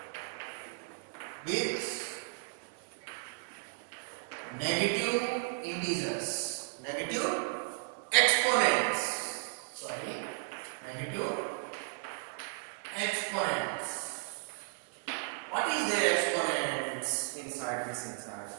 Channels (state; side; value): silent; left; 55 dB below the other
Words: with negative integers, negative exponents, negative exponents. What is their exponents inside this inside?